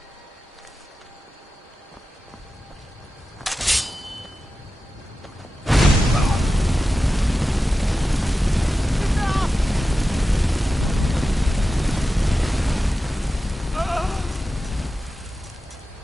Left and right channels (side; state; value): both; normal; correlation 0.93